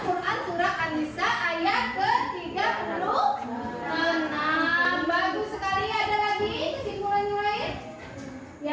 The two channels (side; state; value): both; identical; correlation 1.00